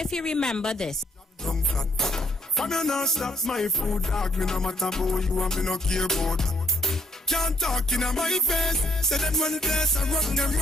he remember this. From you not stop my food, dog. Me no matter about you and me no care about. Can't talk in my face. Say them run place and run them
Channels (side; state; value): both; normal; correlation 0.67